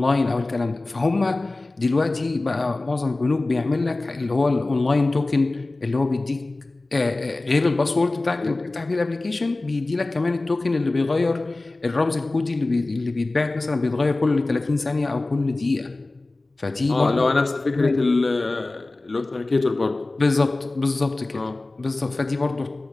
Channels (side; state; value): right; quieter; 3.0 dB